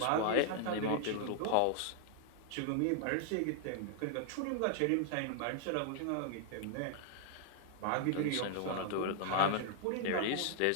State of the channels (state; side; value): different; both; correlation 0.00